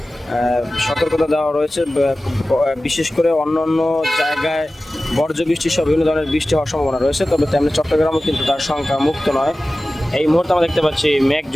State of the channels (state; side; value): normal; both; correlation 0.96